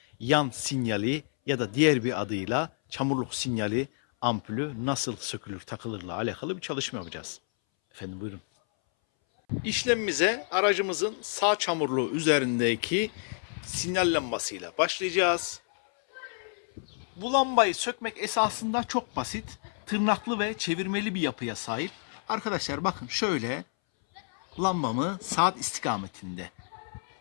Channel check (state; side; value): silent; right; 58 dB below the other